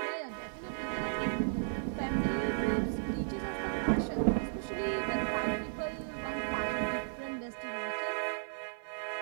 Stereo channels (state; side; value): silent; left; digital silence